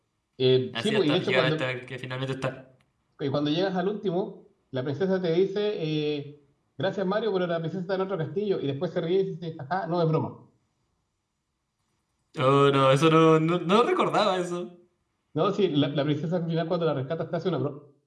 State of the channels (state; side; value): identical; both; correlation 1.00